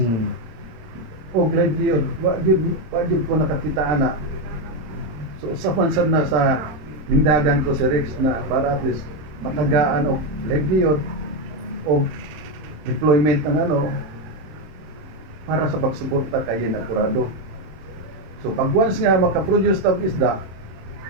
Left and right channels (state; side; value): late; left; 26 ms